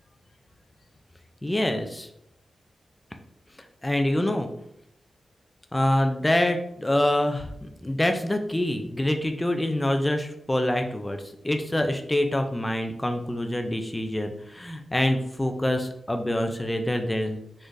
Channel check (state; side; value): normal; both; correlation 0.97